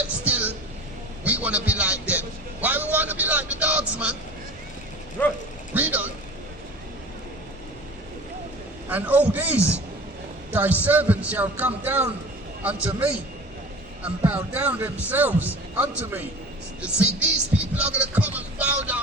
still we want to be like them. Why we want to be like the dogs, man? Read on. And all these thy servants shall come down unto me, and bow down themselves unto me. You see, these people are going to come and bow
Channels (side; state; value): both; normal; correlation 0.39